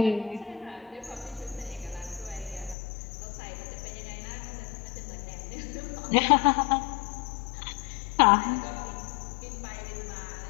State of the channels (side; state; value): right; drops out; at 2.8 s